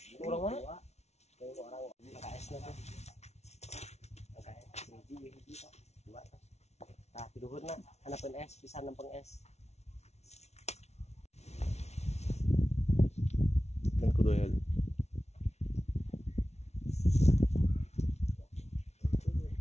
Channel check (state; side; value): late; right; 0.31 ms